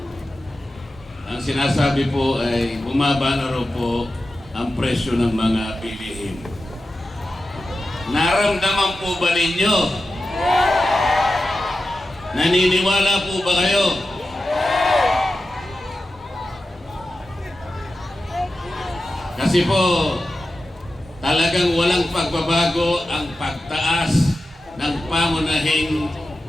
ang sinasabi po ay bumaba na raw po ang presyo ng mga bilihin. Naramdaman po ba ninyo? Naniniwala po ba kayo? Kasi po, talagang walang pagbabago ang pagtaas ng pangunahing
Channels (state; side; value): normal; both; correlation 0.92